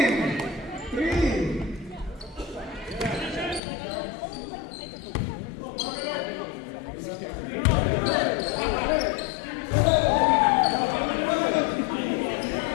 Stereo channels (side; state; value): right; drops out; at 3.6 s